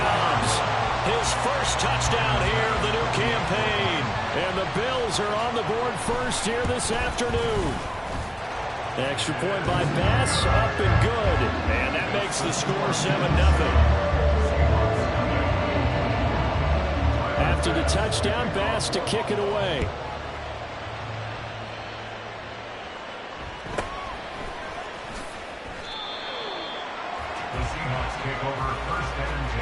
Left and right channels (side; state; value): both; identical; correlation 1.00